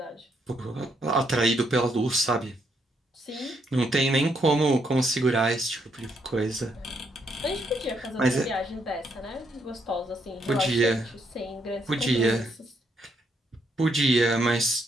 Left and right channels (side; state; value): both; normal; correlation 0.75